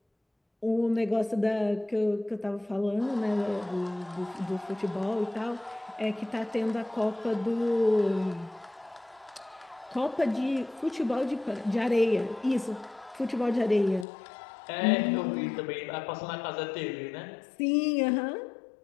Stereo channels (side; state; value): right; drops out; at 14.1 s